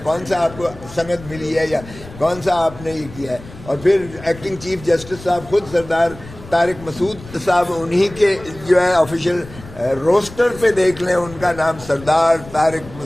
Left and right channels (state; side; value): noise; left; rumble, 17 dB below the sound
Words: کون سا آپ کو سند ملی ہے، یا کون سا آپ نے یہ کیا ہے؟ اور پھر ایکٹنگ چیف جسٹس صاحب خود سردار طارق مسعود صاحب، انہی کے جو ہے آفیشیل روسٹر پہ دیکھ لیں، ان کا نام سردار طارق